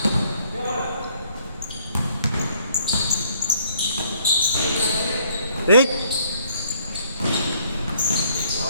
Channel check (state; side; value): inverted; both; correlation -0.65